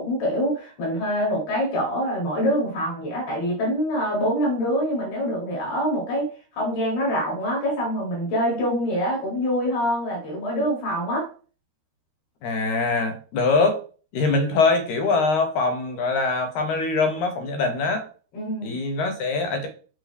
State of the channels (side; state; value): right; late; 13 ms